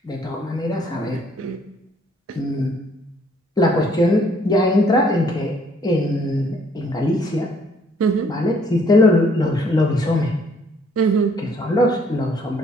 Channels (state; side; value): normal; both; correlation 0.63